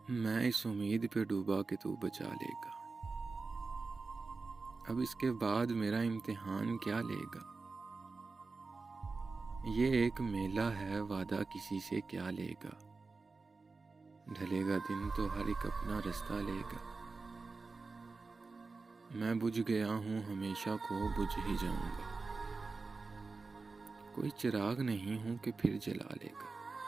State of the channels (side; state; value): left; quieter; 4.0 dB